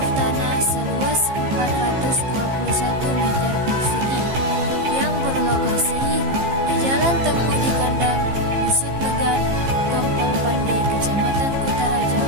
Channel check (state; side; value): late; left; 15 ms